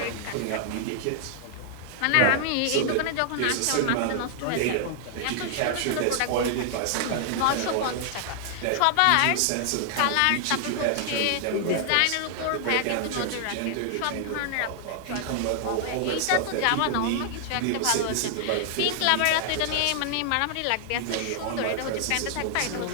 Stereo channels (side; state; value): both; different; correlation 0.00